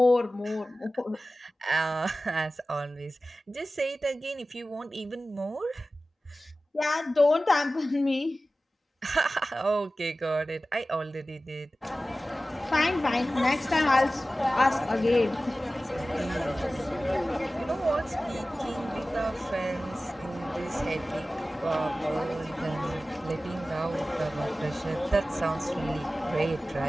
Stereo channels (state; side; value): normal; both; correlation 0.96